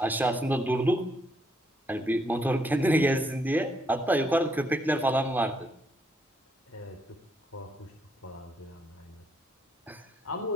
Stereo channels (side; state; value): both; normal; correlation 0.73